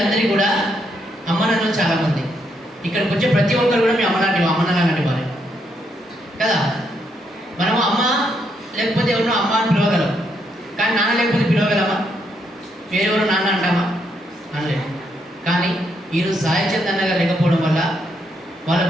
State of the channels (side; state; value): both; normal; correlation 0.76